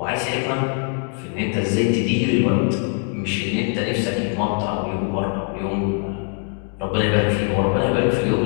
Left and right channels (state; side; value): quieter; right; 40.0 dB